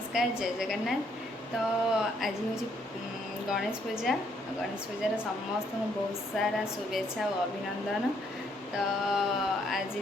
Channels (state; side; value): normal; both; correlation 0.70